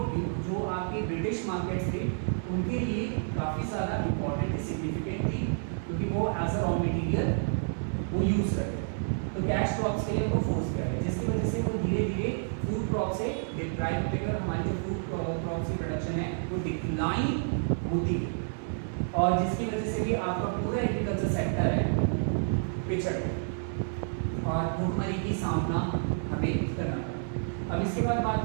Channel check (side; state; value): left; silent; 58 dB below the other